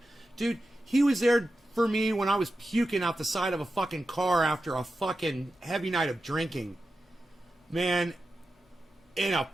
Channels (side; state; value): both; normal; correlation 0.92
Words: Dude, he was there for me when I was puking out the side of a fucking car after a fucking heavy night of drinking. Man, in a